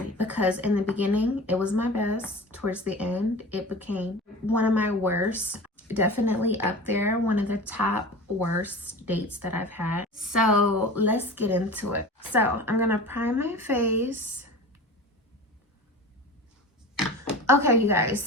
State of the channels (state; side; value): normal; both; correlation 0.35